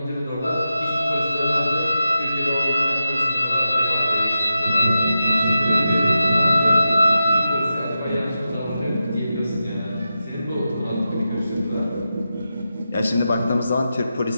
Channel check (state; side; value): inverted; both; correlation -0.90